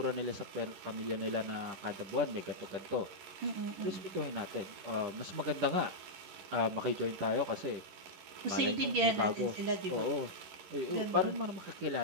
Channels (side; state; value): left; late; 11 ms